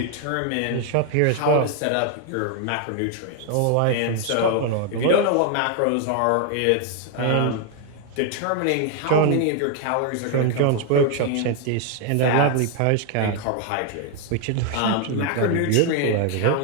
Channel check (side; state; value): both; different; correlation 0.01